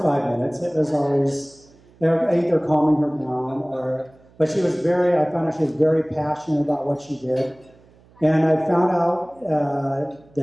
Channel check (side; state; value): right; noise; hum, 29 dB below the sound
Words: minutes. It was always either calming her down but she was I found out she was very passionate about what she did. And I found out